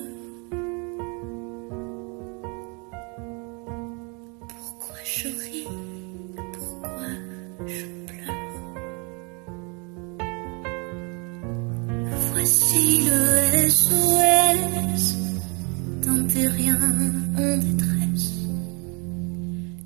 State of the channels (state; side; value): quieter; left; 33.2 dB